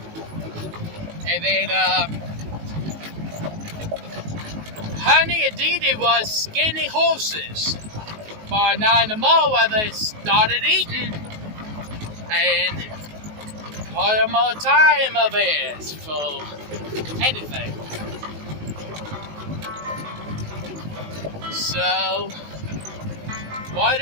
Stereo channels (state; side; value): late; left; 19 ms